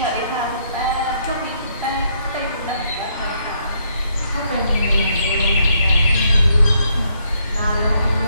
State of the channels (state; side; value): inverted; both; correlation -0.72